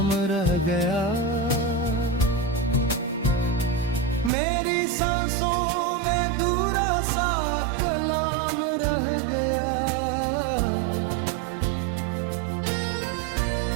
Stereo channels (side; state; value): left; drops out; at 4.3 s